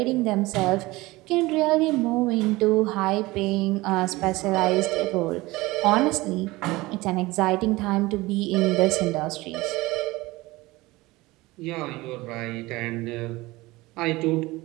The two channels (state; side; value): quieter; left; 20.5 dB